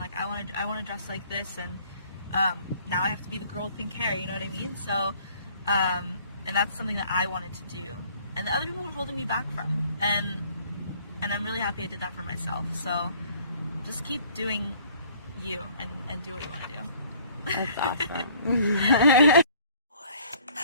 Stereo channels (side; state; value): both; inverted; correlation -0.57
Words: I want to dress like this, and now I have to be the girl with pink hair, you know what I mean? So, and that's something that I wanted to do, and the other people were holding me back from, and I'm really happy I did that for myself. So just keep doing you, and do what you want to do. That's awesome.